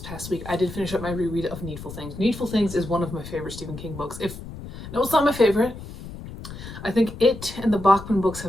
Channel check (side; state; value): left; noise; rumble, 12 dB below the sound